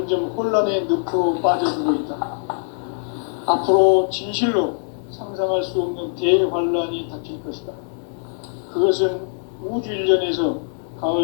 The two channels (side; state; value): right; silent; digital silence